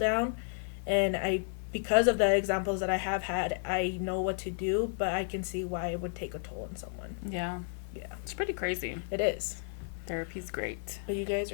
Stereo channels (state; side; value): silent; right; digital silence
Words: And because of the examples that I have had, I know what to do, but I can see why it would take a toll on someone. Yeah. Yeah. It's pretty crazy. It is. Therapy's great. But you guys